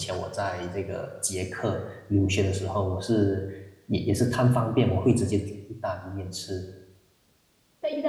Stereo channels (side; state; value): both; identical; correlation 1.00